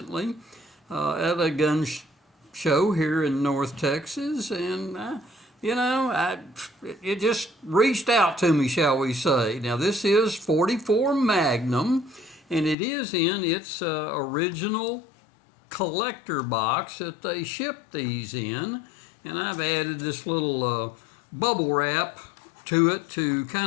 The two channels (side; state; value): right; drops out; at 12.8 s